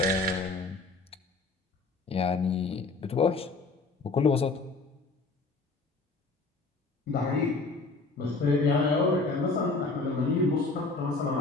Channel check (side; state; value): right; quieter; 3.7 dB